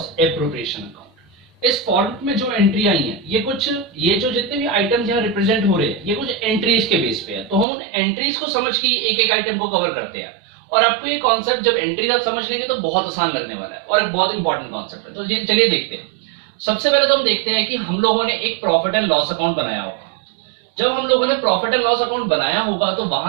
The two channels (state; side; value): drops out; left; at 7.7 s